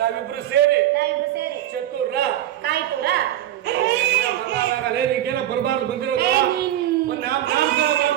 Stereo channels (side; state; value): left; quieter; 12.7 dB